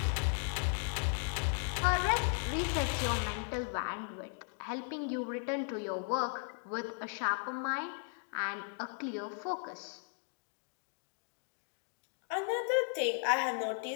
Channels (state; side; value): silent; right; 53 dB below the other